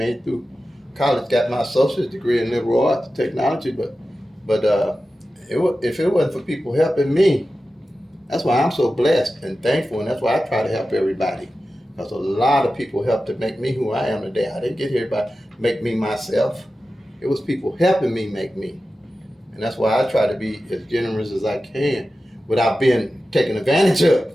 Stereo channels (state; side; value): normal; both; correlation 0.93